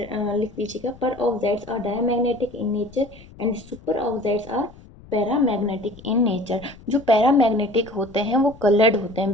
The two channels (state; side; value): noise; left; rumble, 21 dB below the sound